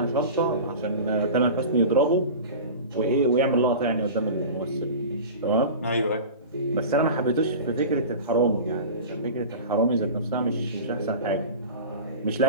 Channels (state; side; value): inverted; both; correlation -0.34